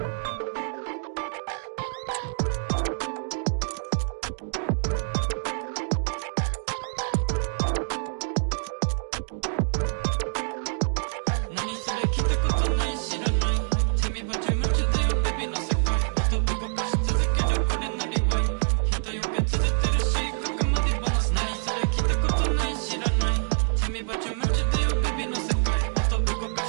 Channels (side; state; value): left; silent; digital silence